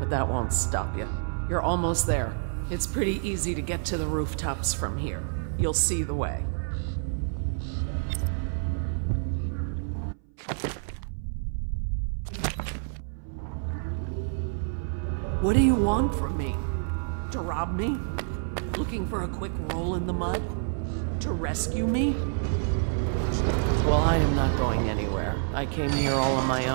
but that won't stop you. You're almost there. It's pretty easy to get to the rooftops from here. You'll see the way. What do you want from me? To rob me? Looking for a quick roll in the mud? To rescue me? Well, I am not going anywhere. I came here all on my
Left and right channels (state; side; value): silent; left; 59 dB below the other